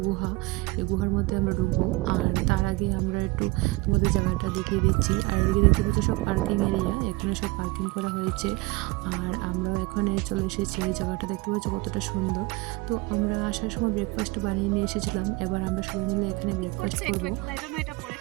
গুহা। এই গুহার মধ্যে আমরা ঢুকবো। আর তার আগে আমরা একটু তোমাদের জায়গাটা দেখিয়ে দিচ্ছি। আর এদিকে দেখতে পাচ্ছ সব পার্কিং এরিয়া, এখানে সব পার্কিং করা হয়েছে। আর আমরাও এখানে চলে এসেছি। এই জায়গাটা দেখতে পাচ্ছ কতটা সুন্দর। তো আমরা আসার সময় ব্রেকফাস্ট বানিয়ে নিয়ে এসেছিলাম। এবার আমরা সবাই মিলে এখানে ব্রেকফাস্ট করব।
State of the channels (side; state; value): left; quieter; 22.5 dB